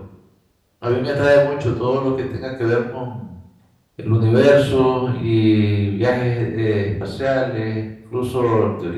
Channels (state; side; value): identical; both; correlation 1.00